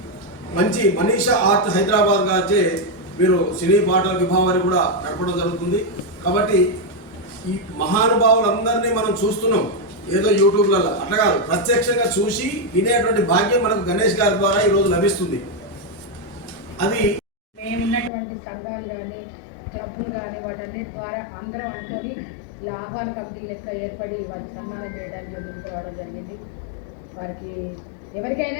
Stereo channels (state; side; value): drops out; right; at 18.1 s